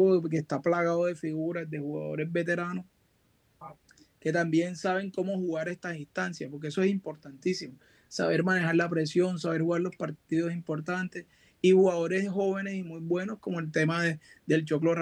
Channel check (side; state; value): both; identical; correlation 1.00